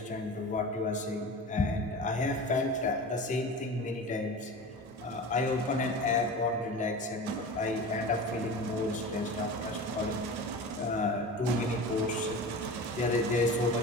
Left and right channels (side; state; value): both; normal; correlation 0.33